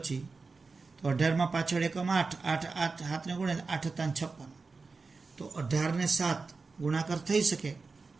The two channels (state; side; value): quieter; left; 4.2 dB